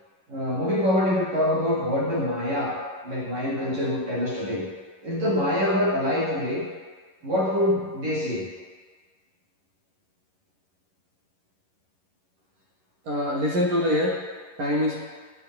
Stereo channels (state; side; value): late; left; 11 ms